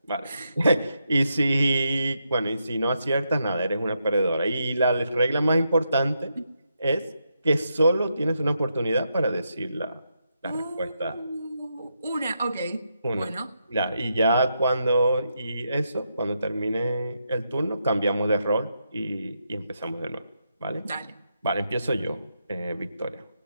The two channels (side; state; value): both; inverted; correlation -0.82